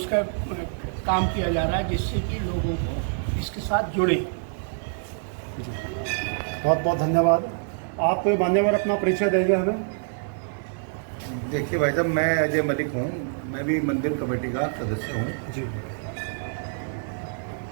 काम किया जा रहा है जिससे कि लोगों को इसके साथ जुड़े। बहुत बहुत धन्यवाद। आप मान्यवर अपना परिचय देंगे हमें। देखिए भाई साहब, मैं अजय मलिक हूँ, मैं भी मंदिर कमेटी का सदस्य हूँ। जी,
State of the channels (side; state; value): left; silent; digital silence